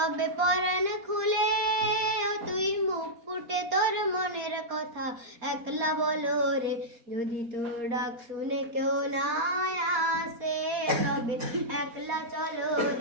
পরাণ খুলে ও তুই মুখ ফুটে তোর মনের কথা একলা বলো রে। যদি তোর ডাক শুনে কেউ না আসে তবে একলা চলো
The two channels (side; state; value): left; late; 4.2 ms